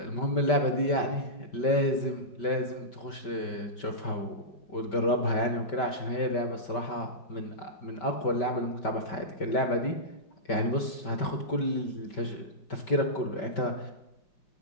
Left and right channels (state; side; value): late; right; 5.2 ms